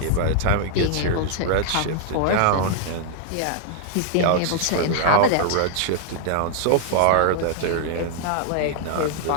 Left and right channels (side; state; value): both; different; correlation -0.01